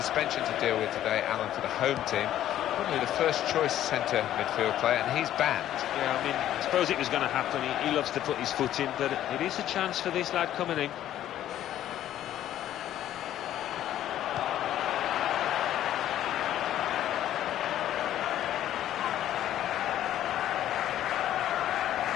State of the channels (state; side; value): quieter; right; 12.1 dB